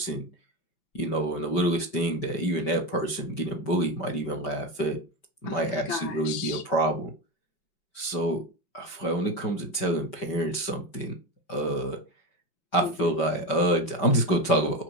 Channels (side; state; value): right; late; 5.2 ms